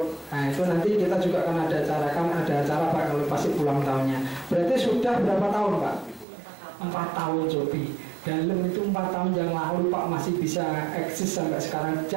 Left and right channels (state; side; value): drops out; left; at 6.2 s